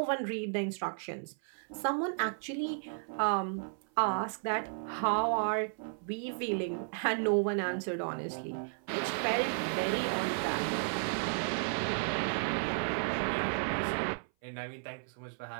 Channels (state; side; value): silent; left; 55 dB below the other